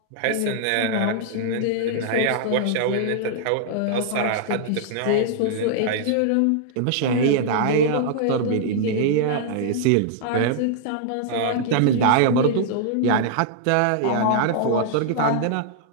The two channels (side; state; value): both; different; correlation -0.01